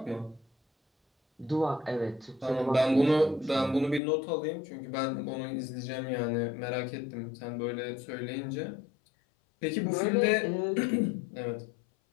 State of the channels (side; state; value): right; drops out; at 4.0 s